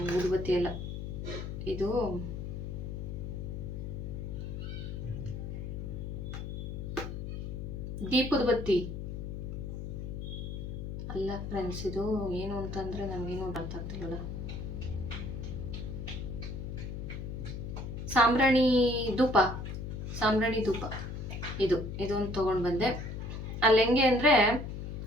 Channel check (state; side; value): noise; left; hum, 6 dB below the sound